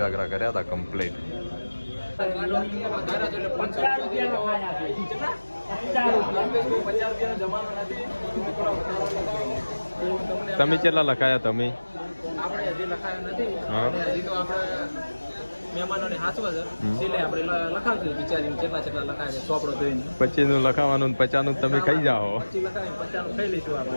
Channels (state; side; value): inverted; both; correlation -1.00